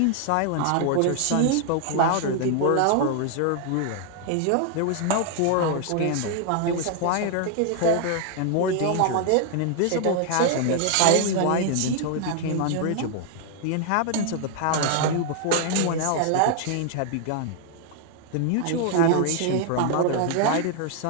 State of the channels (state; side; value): different; both; correlation 0.00